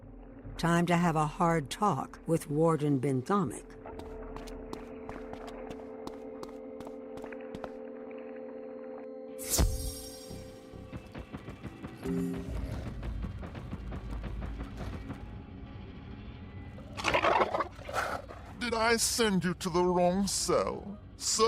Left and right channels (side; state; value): both; identical; correlation 1.00